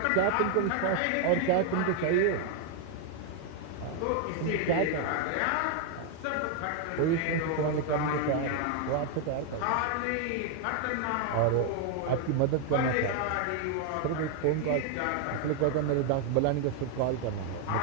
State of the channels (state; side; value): different; both; correlation 0.00